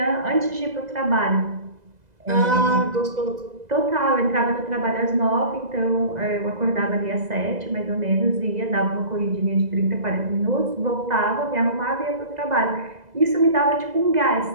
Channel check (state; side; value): late; left; 2.0 ms